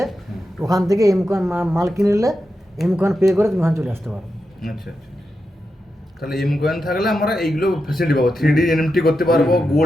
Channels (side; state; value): both; normal; correlation 0.88